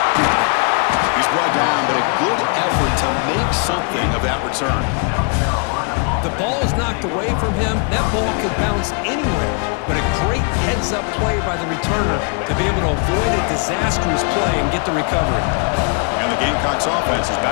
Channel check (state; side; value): quieter; right; 37.2 dB